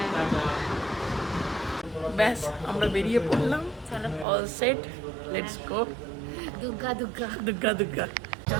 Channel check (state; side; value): drops out; left; at 4.2 s